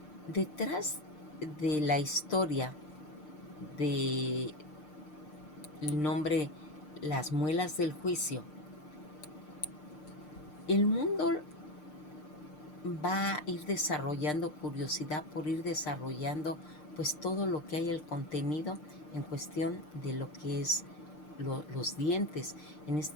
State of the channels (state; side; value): late; right; 6.6 ms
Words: Detrás de la historia de el nombre las muelas del juicio, el mundo va a ir desarrollando curiosidad por ir desarrollando pues todo lo que hay, el contenido en cuestión de lo que es los dientes. En